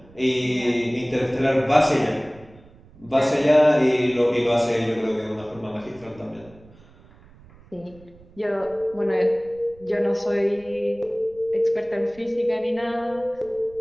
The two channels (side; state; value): right; noise; rumble, 25 dB below the sound